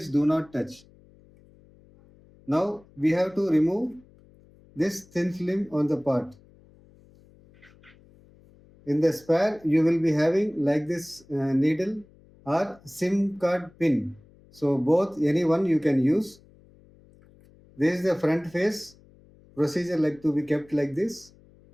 do not touch. Now we have to remove this thin film on the part. In the spare, you will be having like this needle or SIM card pin. So both, any one you can use. This is the front face. Procedure like to be kept like this.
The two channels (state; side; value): noise; left; hum, 27 dB below the sound